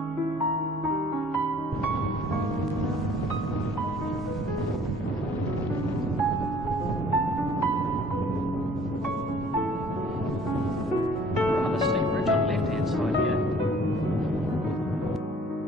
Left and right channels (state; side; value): normal; both; correlation 0.55